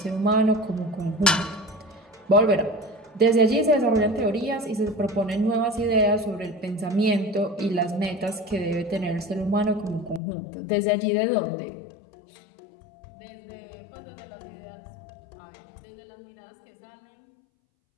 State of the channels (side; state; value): right; drops out; at 10.2 s